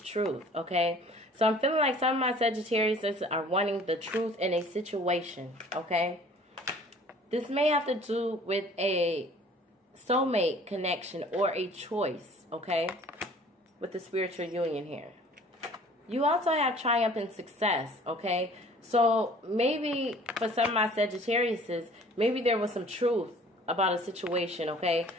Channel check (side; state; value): both; normal; correlation 0.51